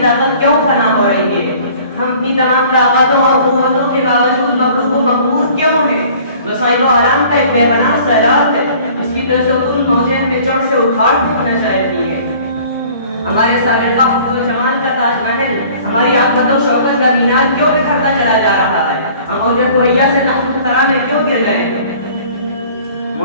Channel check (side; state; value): both; inverted; correlation -0.51